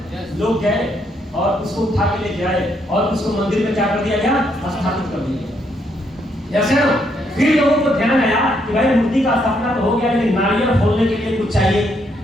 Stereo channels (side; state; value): both; normal; correlation 0.74